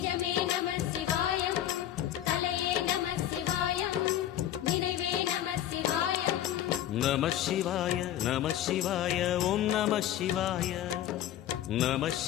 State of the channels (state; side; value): quieter; right; 11.9 dB